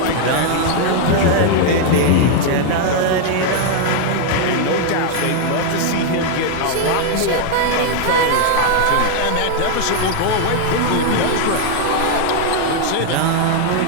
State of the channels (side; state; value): both; different; correlation 0.00